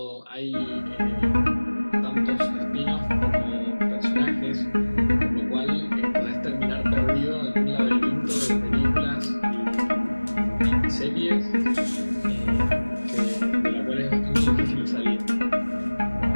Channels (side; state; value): both; inverted; correlation -1.00